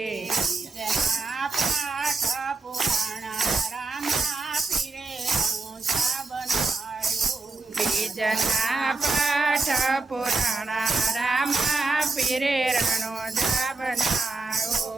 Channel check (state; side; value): quieter; left; 3.7 dB